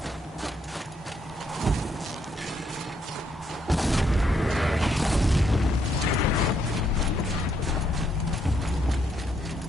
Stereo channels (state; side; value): normal; both; correlation 0.74